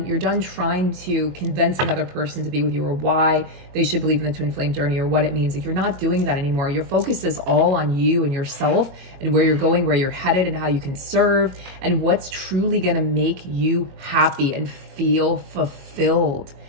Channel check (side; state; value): left; late; 22 ms